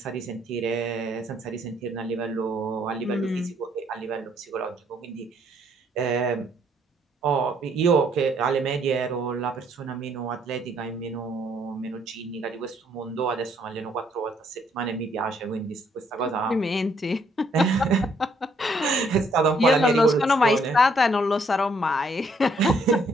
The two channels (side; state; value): both; normal; correlation 0.68